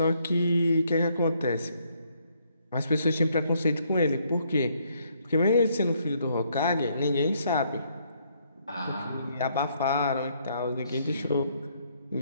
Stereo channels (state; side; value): inverted; both; correlation -0.70